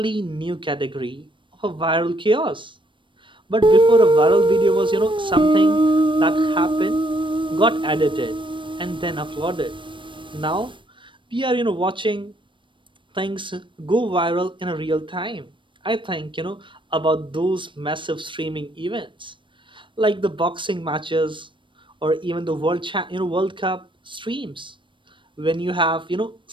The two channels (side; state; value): left; late; 0.24 ms